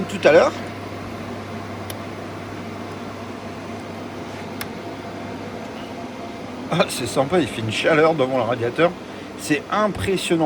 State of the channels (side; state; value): both; identical; correlation 1.00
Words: tout à l'heure, ah, c'est sympa, il fait une chaleur devant le radiateur, c'est